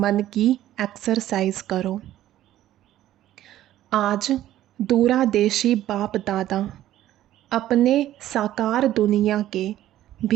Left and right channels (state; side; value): quieter; left; 13.3 dB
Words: की एक्सरसाइज करो। आज दूरादेशी बाप दादा अपने साकार दुनिया के